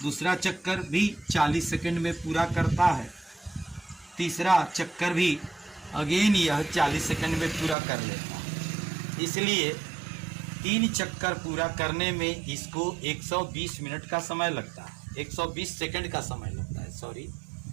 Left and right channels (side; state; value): left; drops out; at 7.8 s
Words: दूसरा चक्कर भी 40 सेकंड में पूरा करता है। तीसरा चक्कर भी अगेन यह 40 सेकंड में पूरा कर लेता है। इसलिए 3 चक्कर पूरा करने में इसको 120 मिनट का समय लगता है, 120 सेकंड का समय लगता है। सॉरी,